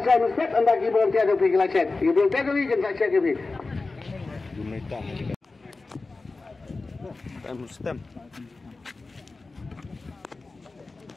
siya ng set ang nag-ibang tiyan yung pila set. Ibang tiyan yung ikan sa set yung video. Gumita. Stem.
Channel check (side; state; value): right; quieter; 3.6 dB